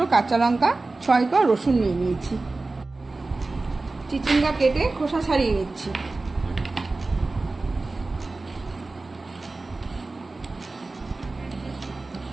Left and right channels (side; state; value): left; quieter; 3.4 dB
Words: কাঁচা লঙ্কা, 6 কোয়া রসুন নিয়ে নিয়েছি। চিচিঙ্গা কেটে খোসা ছাড়িয়ে নিচ্ছি।